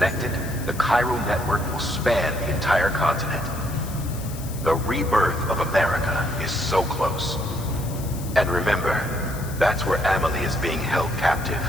it, the chiral network will span the entire continent. The rebirth of America is so close. And remember, that's where Amelie is being held captive.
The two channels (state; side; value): noise; left; hiss, 15 dB below the sound